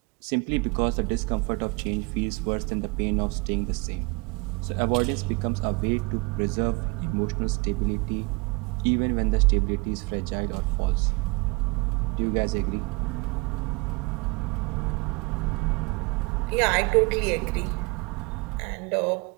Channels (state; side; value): quieter; left; 28.3 dB